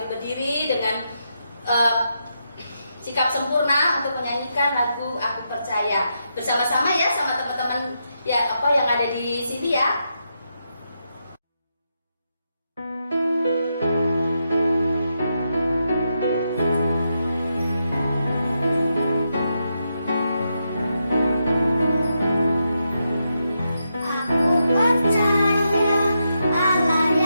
berdiri dengan sikap sempurna untuk menyanyikan lagu Aku Percaya bersama-sama ya, sama teman-teman ya yang ada di sini ya.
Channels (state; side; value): inverted; both; correlation -0.83